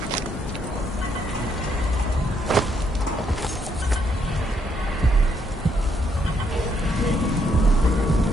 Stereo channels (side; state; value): both; normal; correlation 0.74